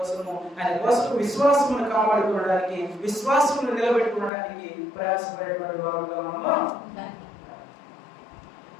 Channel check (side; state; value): right; drops out; at 4.3 s